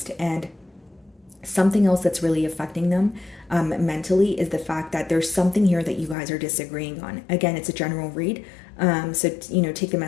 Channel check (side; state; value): right; drops out; at 6.2 s